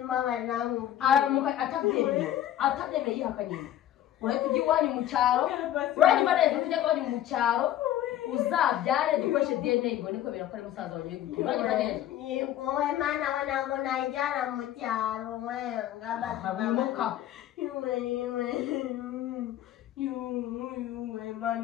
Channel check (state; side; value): quieter; right; 12.1 dB